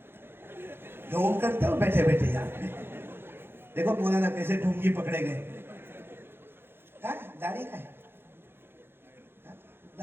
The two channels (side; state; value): left; late; 0.11 ms